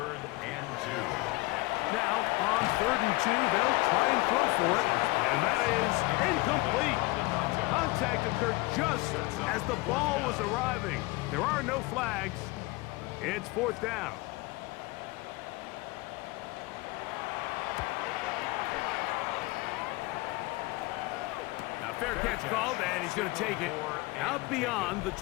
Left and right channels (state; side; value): quieter; right; 22.5 dB